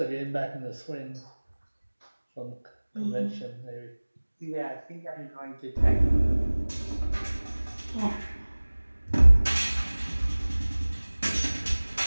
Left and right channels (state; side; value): inverted; both; correlation -1.00